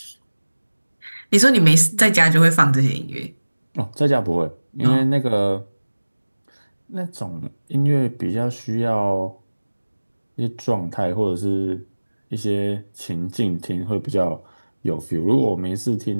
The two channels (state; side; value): inverted; both; correlation -1.00